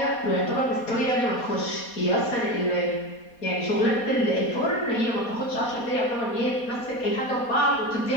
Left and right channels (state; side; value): late; right; 4.2 ms